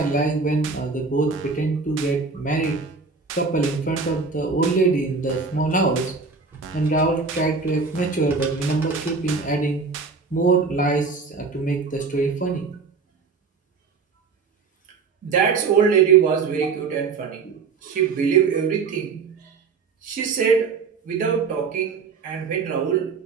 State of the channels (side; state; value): left; quieter; 4.8 dB